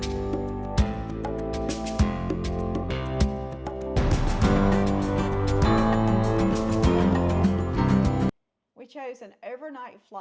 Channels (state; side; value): identical; both; correlation 1.00